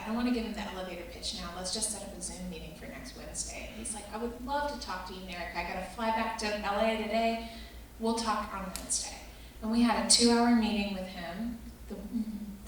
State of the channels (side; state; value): both; identical; correlation 1.00